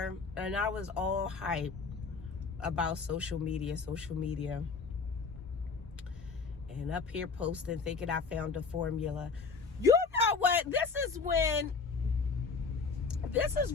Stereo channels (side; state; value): right; quieter; 4.9 dB